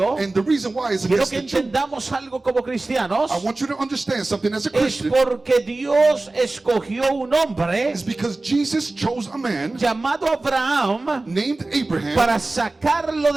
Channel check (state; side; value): quieter; left; 3.1 dB